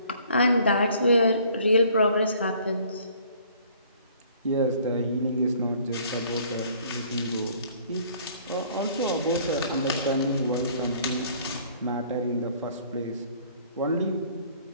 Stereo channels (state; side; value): inverted; both; correlation -0.57